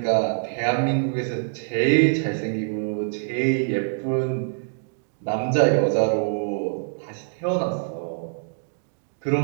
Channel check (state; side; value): silent; left; digital silence